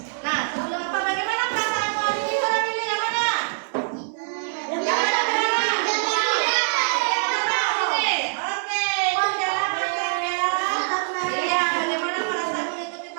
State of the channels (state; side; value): silent; left; 63 dB below the other